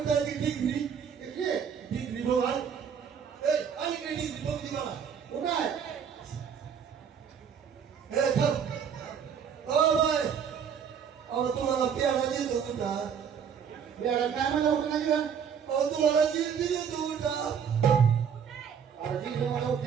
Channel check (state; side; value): quieter; left; 7.4 dB